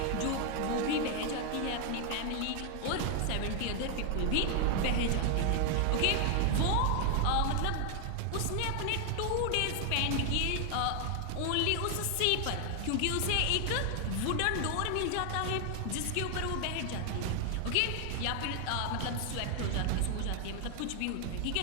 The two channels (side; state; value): both; different; correlation 0.00